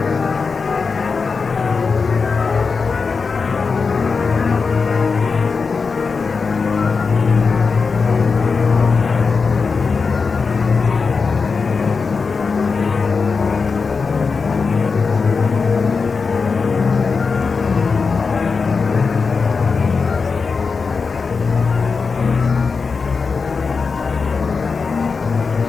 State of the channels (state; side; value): quieter; right; 4.9 dB